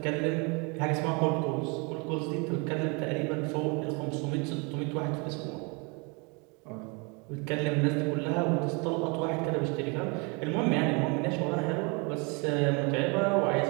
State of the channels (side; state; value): left; quieter; 31.2 dB